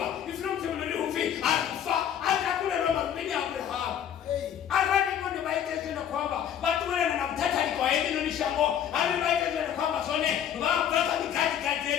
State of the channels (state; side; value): quieter; right; 9.5 dB